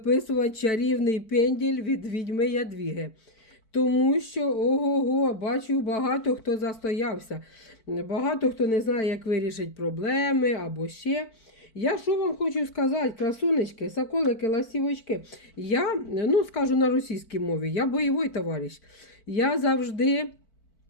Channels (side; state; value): right; late; 4.5 ms